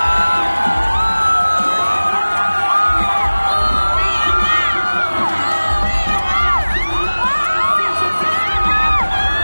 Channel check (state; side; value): inverted; both; correlation -1.00